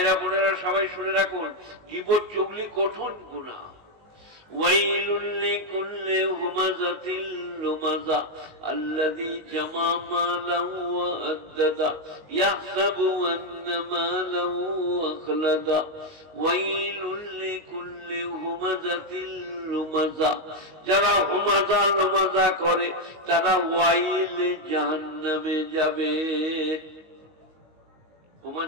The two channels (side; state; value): left; late; 19 ms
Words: বোনেরা সবাই শুনে রাখুন, গীবত চুগলি কঠিন গুনাহ। ওয়াইলুল লিকুল্লি হুমাযাতিল লুমাযা আল্লাযী জামা মালাহু ওয়া আদ্দাদা ইয়াহসাবু আন্না মালাহু আখলাদা। ওয়াইলুল লিকুল্লি হুমাযাতিল লুমাযা, যারা হুমাযা লুমাযা করে তারা ওয়াইল জাহান্নামে যাবে।